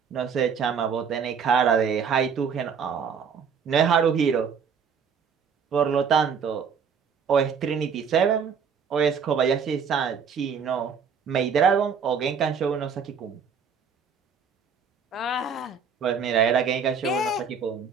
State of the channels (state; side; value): quieter; left; 6.4 dB